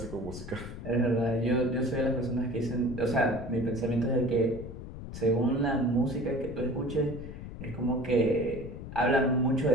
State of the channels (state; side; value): noise; left; rumble, 11 dB below the sound